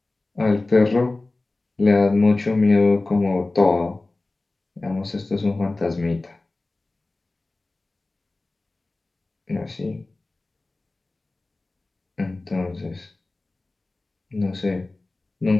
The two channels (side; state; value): right; quieter; 3.1 dB